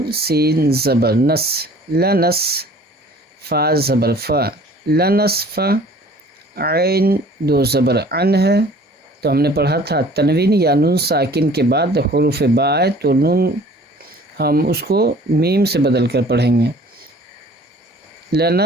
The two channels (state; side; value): normal; both; correlation 0.50